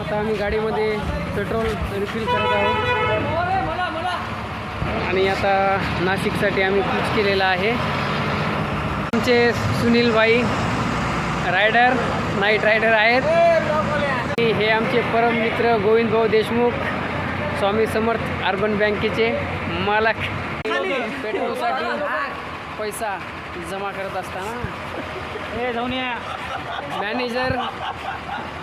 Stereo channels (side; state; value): both; identical; correlation 1.00